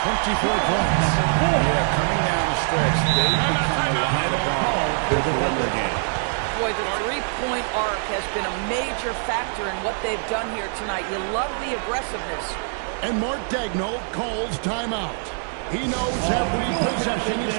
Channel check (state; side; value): silent; left; 57 dB below the other